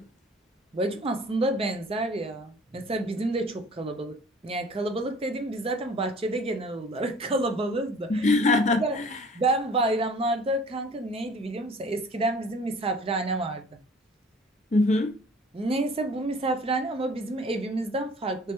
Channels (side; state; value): both; normal; correlation 0.49